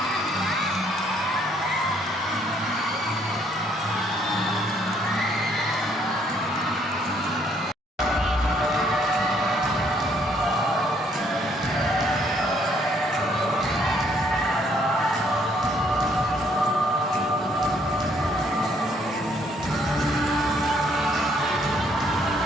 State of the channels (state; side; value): normal; both; correlation 0.67